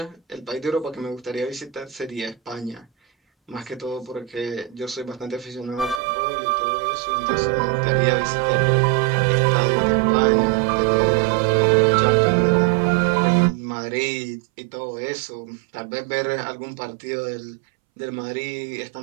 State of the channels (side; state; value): left; drops out; at 6.0 s